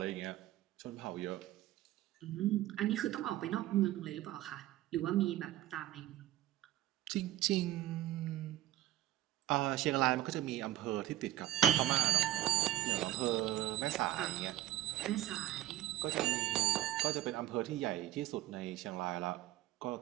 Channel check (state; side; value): quieter; left; 14.0 dB